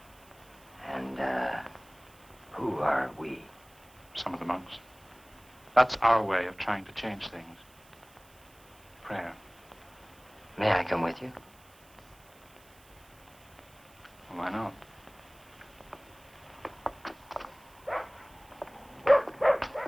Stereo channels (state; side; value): noise; right; hiss, 26 dB below the sound